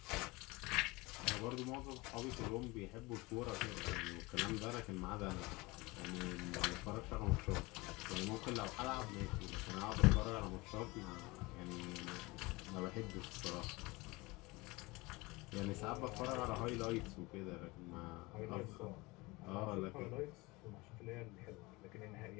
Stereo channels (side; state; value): right; quieter; 23.3 dB